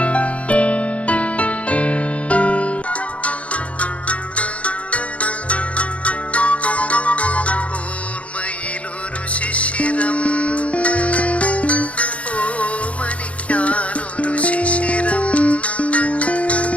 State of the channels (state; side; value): late; right; 0.064 ms